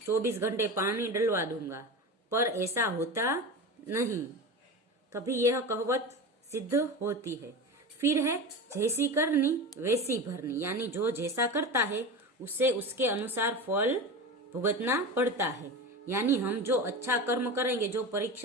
24 घंटे पानी डलवा दूंगा, पर ऐसा होता नहीं, कभी यह कहावत सिद्ध होती है। फिर है जैसी करनी वैसी भरनी, यानी जो जैसा करता है उसे उसके अनुसार फल भुगतना पड़ता है। यानी हम जो अच्छा कर्म करेंगे, जो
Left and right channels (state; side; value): normal; both; correlation 0.27